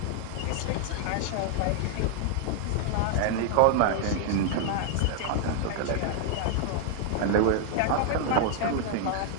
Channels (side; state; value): both; different; correlation 0.00